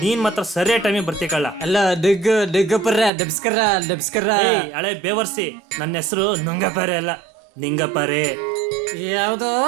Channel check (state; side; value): drops out; left; at 3.1 s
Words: ನೀನ್ ಮಾತ್ರ ಸರಿಯಾದ ಟೈಮಿಗೆ ಬರ್ತೀಕಲ್ಲ. ಅಲ್ಲ ನಮಸ್ಕಾರ ನಮಸ್ಕಾರ. ಹಳೆ ಬೇವರ್ಸಿ, ನನ್ನ ಹೆಸರು ನುಂಗಪಾರೆ ಅಲ್ಲ, ನಿಂಗಪಾರೆ. ಯಾವ್ದೋ